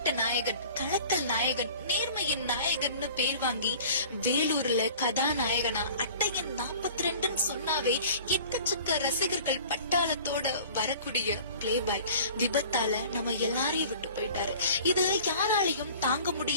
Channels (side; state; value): both; inverted; correlation -0.45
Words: நாயகன், கலக்கல் நாயகன், நேர்மையின் நாயகன்னு பேர் வாங்கி வேலூர்ல கதாநாயகனா அட்டையன் 42 சொன்னாவே எக்கச்சக்க ரசிகர்கள் பட்டாளத்தோட வரக்கூடிய பிளேபாய் விபத்தால நம்ம எல்லாரையும் விட்டு போயிட்டாரு. இது யாராலையும் தாங்க